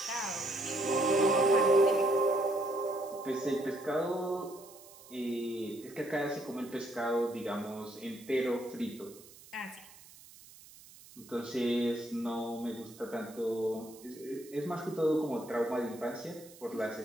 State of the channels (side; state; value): right; noise; hiss, 21 dB below the sound